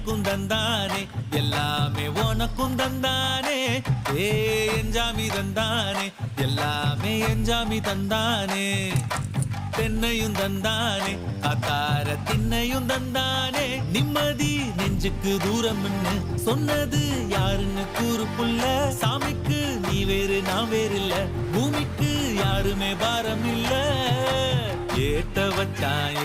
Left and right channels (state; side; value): identical; both; correlation 1.00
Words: தந்தானே எல்லாமே உனக்கும் தந்தானே ஏ எஞ்சாமி தந்தானே எல்லாமே எஞ்சாமி தந்தானே தென்னையும் தந்தானே காத்தார திண்ணையும் தந்தானே நிம்மதி நெஞ்சுக்கு தூரம்னு சொன்னது யாருன்னு கூறு புள்ள சாமிக்கு நீ வேறு நான் வேறு இல்ல பூமிக்கு யாருமே பாரம் இல்ல ஏட்ட வச்சான்